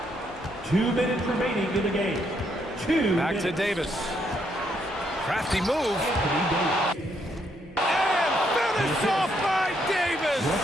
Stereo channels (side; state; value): both; normal; correlation 0.74